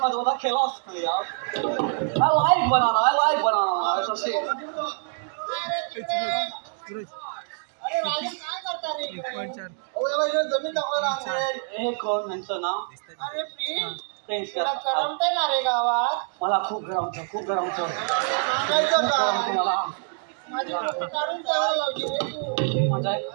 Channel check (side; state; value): left; silent; 55 dB below the other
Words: आजोबाचा खिलाच नाही यार. I like banana. It's a shame. अरे राजा काय करता रे अहो, याला इकडे जमीन दाखवायला आणलंय. हे कोण यांचं नाव? अरे प्लीज फ्रेंड्स तुला करमतंय ना रे गावात मला खूप गरम होतं. सांगायचं का मला माझी फोटो काढून ठेवायला लावली रे तू म्हणजे